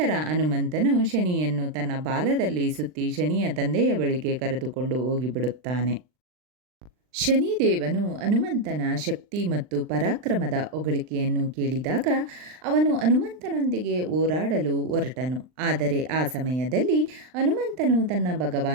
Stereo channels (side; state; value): left; late; 39 ms